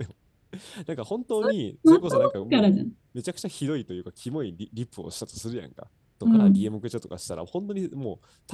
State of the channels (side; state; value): both; identical; correlation 1.00